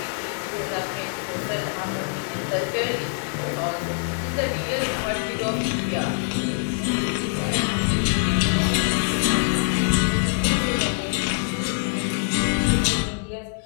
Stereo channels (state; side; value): silent; right; digital silence